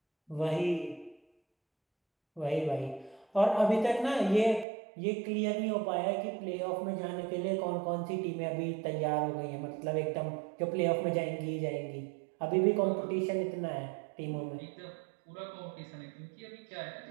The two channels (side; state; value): left; drops out; at 4.7 s